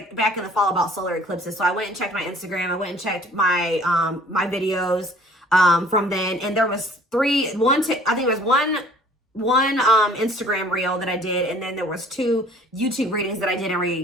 back in the fall about solar eclipses. So I went and checked my Instagram. I went and checked my my videos from then, and there was one Instagram reel that I did, and then there was 2 YouTube readings that I did in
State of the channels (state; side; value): normal; both; correlation 0.53